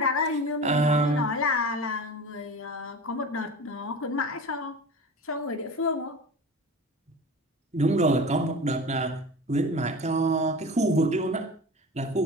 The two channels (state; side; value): normal; both; correlation 0.34